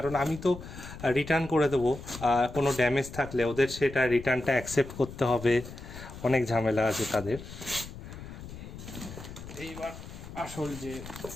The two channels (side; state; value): left; noise; rumble, 13 dB below the sound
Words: আমি তো রিটার্ন করে দেবো। কোনো ড্যামেজ থাকলে ওদের সেটা রিটার্নটা অ্যাকসেপ্ট করতে হবে, অনেক ঝামেলা আছে তাদের। এইবার আসল যে,